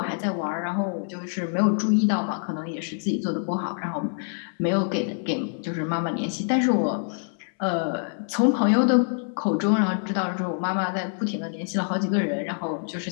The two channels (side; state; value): right; silent; 61 dB below the other